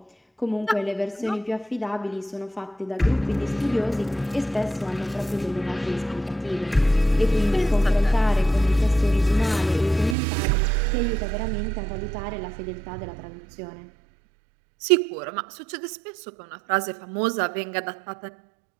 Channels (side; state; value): left; drops out; at 10.2 s